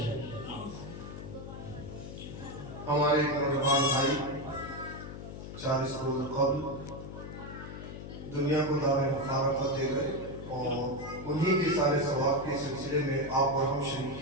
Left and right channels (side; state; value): left; noise; hum, 10 dB below the sound